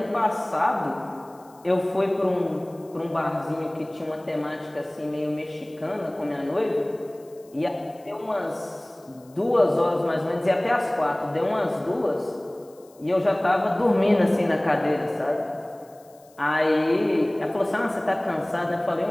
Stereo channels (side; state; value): left; noise; hiss, 29 dB below the sound